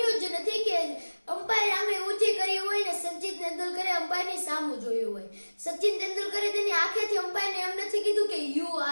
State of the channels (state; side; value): inverted; both; correlation -1.00